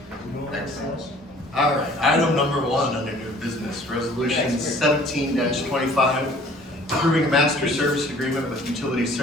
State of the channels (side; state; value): both; normal; correlation 0.53